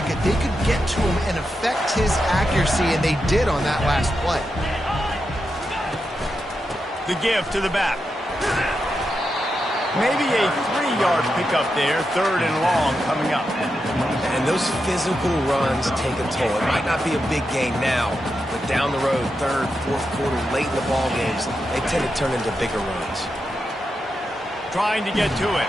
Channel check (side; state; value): both; normal; correlation 0.87